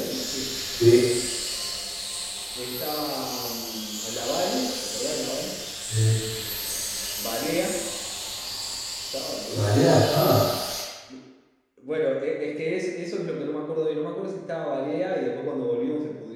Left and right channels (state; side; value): identical; both; correlation 1.00